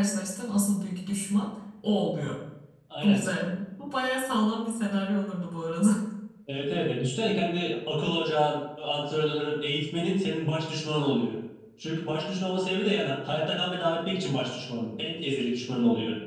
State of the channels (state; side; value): identical; both; correlation 1.00